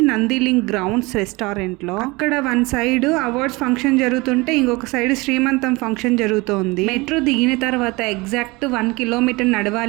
నందిలింగ్ గ్రౌండ్స్ రెస్టారెంట్ లో. అక్కడ వన్ సైడ్ అవార్డ్స్ ఫంక్షన్ జరుగుతుంటే ఇంకొక సైడ్ శ్రీమంతం ఫంక్షన్ జరుగుతోంది. మెట్రో దిగిన తర్వాత ఎగ్జాక్ట్ 1 కిలోమీటర్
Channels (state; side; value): quieter; left; 24.0 dB